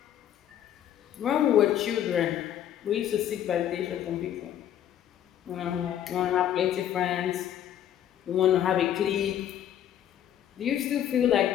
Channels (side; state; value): right; quieter; 10.7 dB